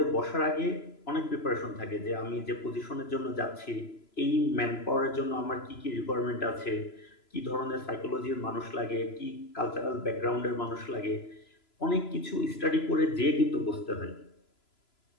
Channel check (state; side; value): late; right; 3.0 ms